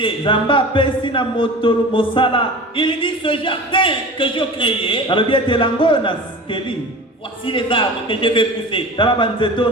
Nzambe apesi na moto mosala. Il dit ce jardin que j'ai créé, Alobi ete elanga oyo naskeli, voici les arbres que je vais pousser. tala banzete oyo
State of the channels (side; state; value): both; normal; correlation 0.36